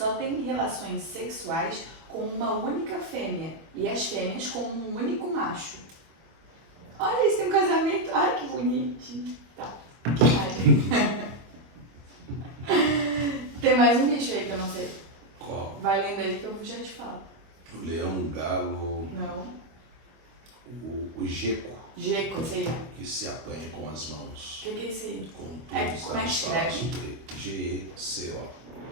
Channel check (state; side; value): late; left; 25 ms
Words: têm relações sexuais com uma única fêmea e as fêmeas com um único macho. Olha, eles têm um casamento. Ai, que bonitinho. Tá, que mais? Tem mais um bicho aí que eu não sei. Qual? Vai lendo aí que eu já te falo. O leão, o galo. Não. O gecko. Gecko, esse aí. Que se apanha com as mãos. O que é esse aí? Com tudo Como é que está nos escreve? palácios do rei. G-E-C-O.